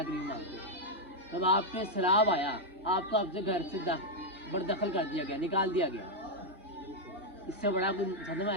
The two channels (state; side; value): normal; both; correlation 0.00